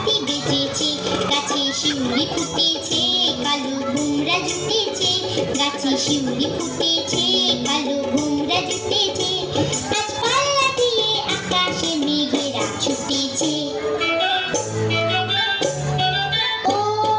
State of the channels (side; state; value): both; identical; correlation 1.00